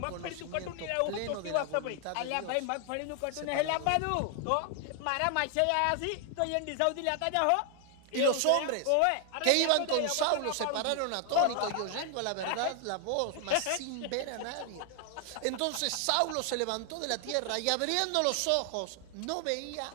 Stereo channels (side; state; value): both; different; correlation 0.00